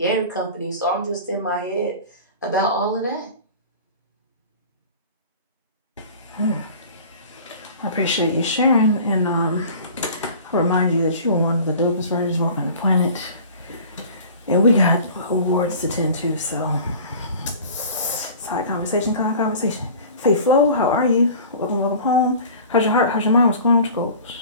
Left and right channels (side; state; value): both; inverted; correlation -0.42